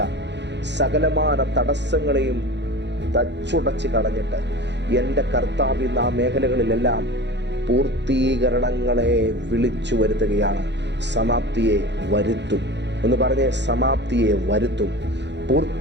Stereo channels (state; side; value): late; left; 0.51 ms